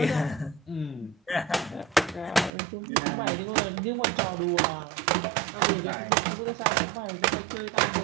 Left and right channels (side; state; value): left; drops out; at 2.5 s